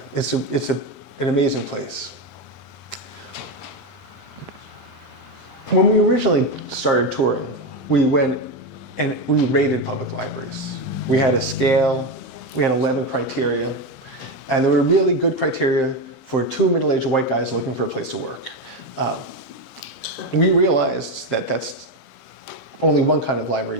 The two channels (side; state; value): right; late; 9.8 ms